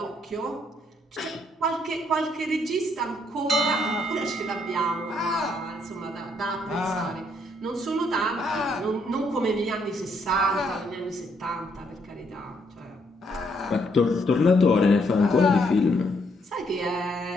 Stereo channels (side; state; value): both; normal; correlation 0.72